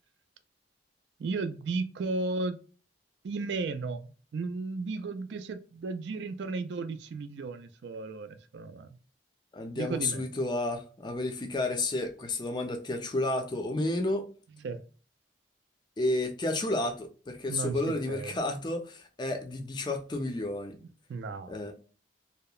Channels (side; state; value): both; normal; correlation 0.48